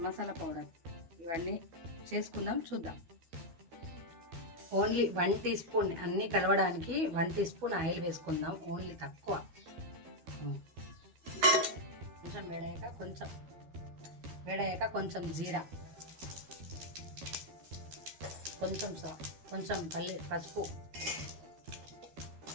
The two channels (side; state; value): left; late; 12 ms